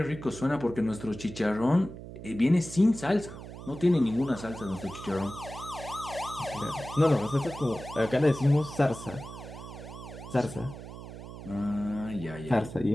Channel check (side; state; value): right; noise; hum, 12 dB below the sound